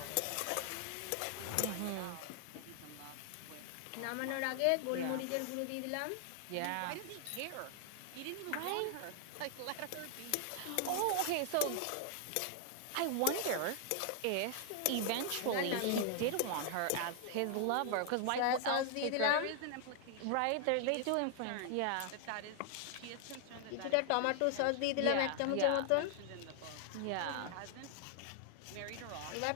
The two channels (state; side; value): different; both; correlation 0.00